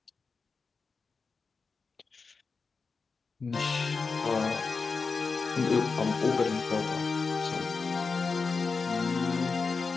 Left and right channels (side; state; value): right; quieter; 4.7 dB